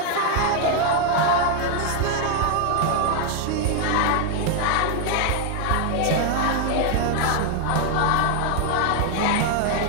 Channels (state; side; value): different; both; correlation 0.00